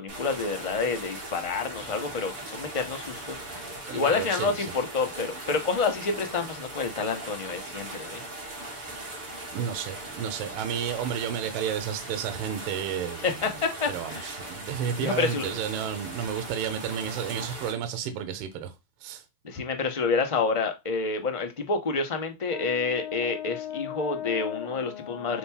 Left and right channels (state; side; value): late; left; 6.9 ms